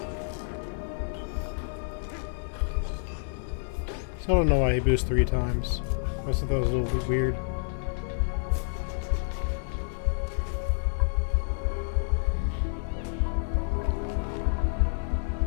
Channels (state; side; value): silent; right; digital silence